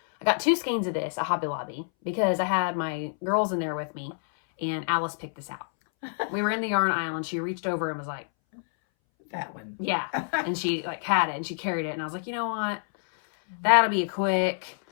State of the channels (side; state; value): right; silent; 60 dB below the other